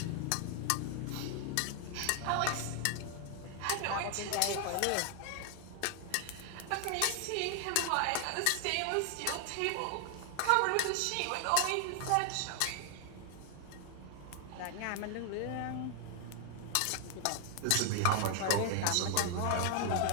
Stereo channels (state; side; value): different; both; correlation 0.00